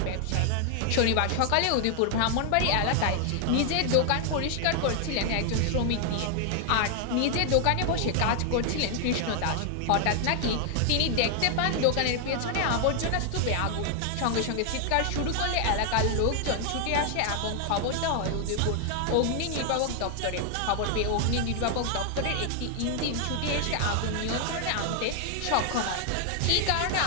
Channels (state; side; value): different; both; correlation 0.00